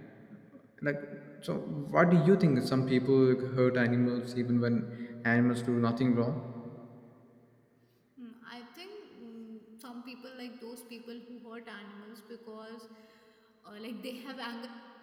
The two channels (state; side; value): identical; both; correlation 1.00